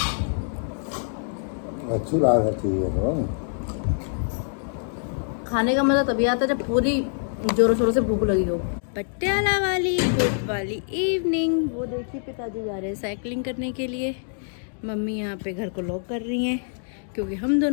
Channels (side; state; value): right; silent; digital silence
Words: अच्छी बात है, ठीक है। तो खाने का मज़ा तभी आता है जब पूरी जोरों शोरों से भूख लगी हो। पटियाला वाली गुड वाली इवनिंग। वो देखिए पिताजी जा रहे हैं साइकिलिंग करने के लिए। मम्मी यहाँ पे घर को लॉक कर रही हैं क्योंकि हम